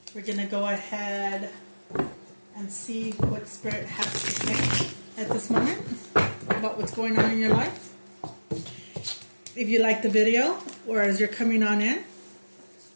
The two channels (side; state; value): both; inverted; correlation -1.00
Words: We're going to go ahead and see what Spirit has to say at this moment about what's going on in your life. If you like the video, or as you're coming on in,